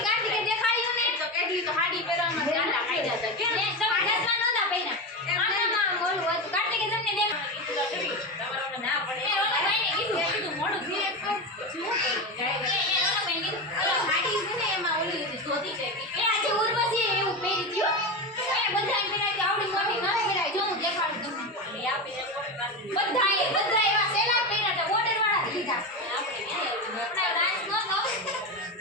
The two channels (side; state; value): both; normal; correlation 0.18